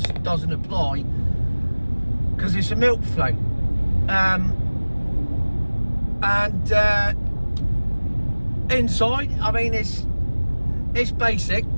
doesn't apply, because it's a milk float. Inside, I mean, it's basic.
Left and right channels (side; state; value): both; inverted; correlation -1.00